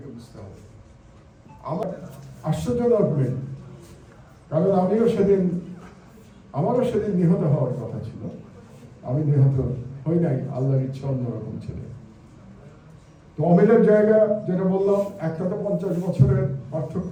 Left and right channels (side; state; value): both; identical; correlation 1.00